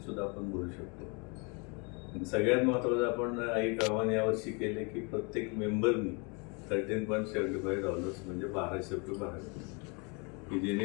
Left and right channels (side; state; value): right; quieter; 32.4 dB